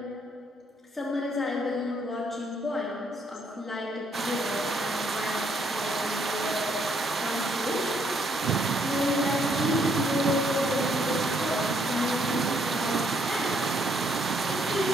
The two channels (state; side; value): normal; both; correlation 0.70